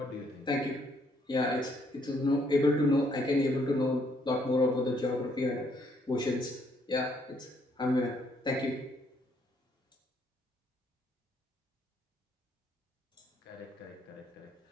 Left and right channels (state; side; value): normal; both; correlation 0.70